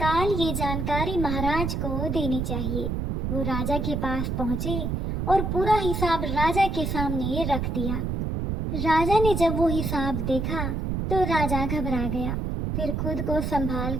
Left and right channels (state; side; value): noise; right; rumble, 1 dB below the sound